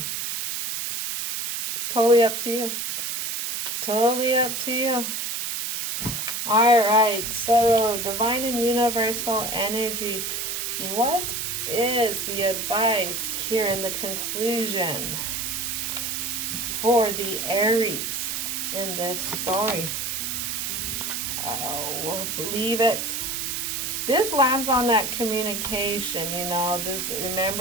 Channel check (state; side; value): noise; right; hiss, 2 dB below the sound